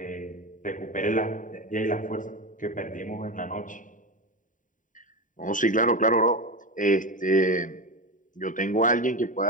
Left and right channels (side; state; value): right; late; 0.38 ms